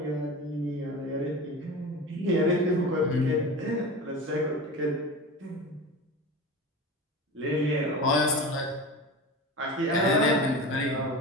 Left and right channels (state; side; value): normal; both; correlation 0.30